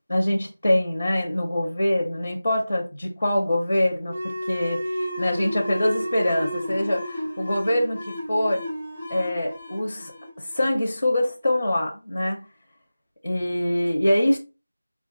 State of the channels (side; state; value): both; inverted; correlation -0.96